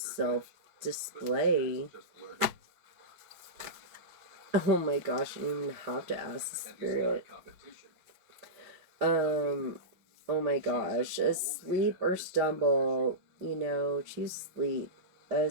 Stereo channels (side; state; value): left; late; 5.0 ms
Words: self-display. Oh my gosh, you don't even have to ask the spirit. Oh my gosh, asleep or stumble, choose sleep,